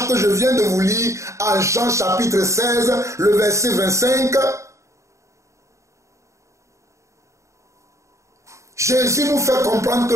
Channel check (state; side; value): late; left; 0.14 ms